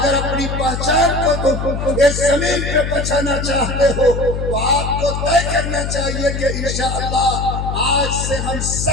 اپنی پہچان کو تم اس زمین پہ بچانا چاہتے ہو تو آپ کو طے کرنا چاہیے کہ انشاءاللہ آج سے ہم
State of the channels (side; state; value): left; noise; hum, 3 dB below the sound